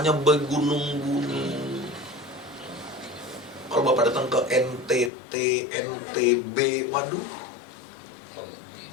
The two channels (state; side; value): drops out; right; at 5.1 s